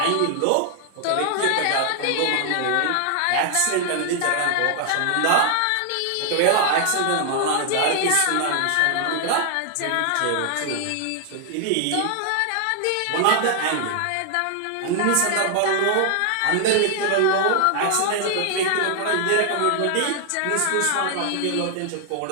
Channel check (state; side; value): different; both; correlation 0.00